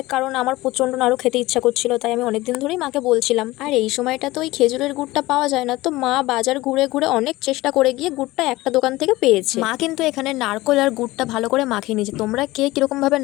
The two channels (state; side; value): quieter; right; 18.9 dB